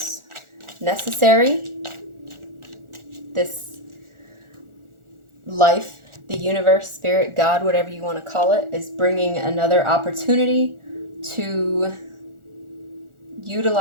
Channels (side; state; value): left; late; 1.4 ms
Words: necessary. This life, the universe, spirit, God, whatever you want to call it, is bringing another opportunity to